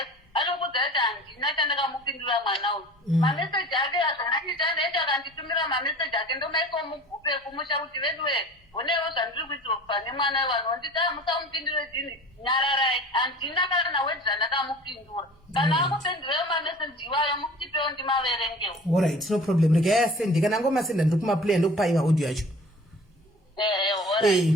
anokudza kuti handina chandakamupindura mwana uyu. Mameseji ake azvanachita ndaiti akanditumira mameseji ake ndomaisa mugupe kumusha kuti veduwe onewo zvandiri kuitira pane mwana vanonditi musamupindure dini nyararai. Handina kana wedi zvandakamupindura. Kana akupindurayo mameseji iwayo mutipewo ndimaverengewo. Alright, no problem. Regai asende kana ngomasenda ndiri kumaplay ndokupai audio yacho.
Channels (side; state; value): both; normal; correlation 0.44